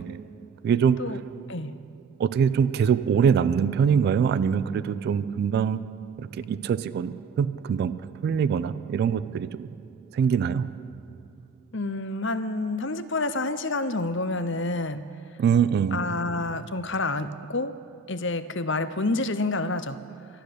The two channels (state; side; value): quieter; left; 4.3 dB